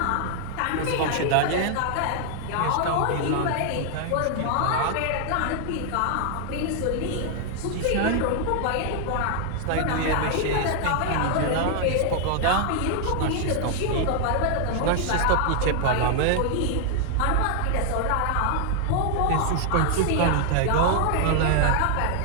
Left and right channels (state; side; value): different; both; correlation 0.00